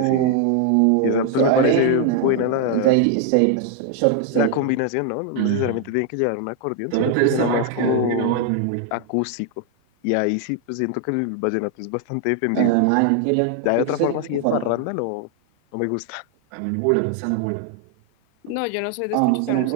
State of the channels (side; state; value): both; different; correlation 0.00